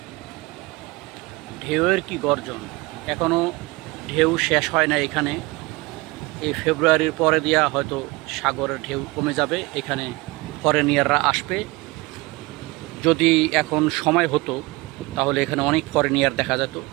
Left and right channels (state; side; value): quieter; left; 23.3 dB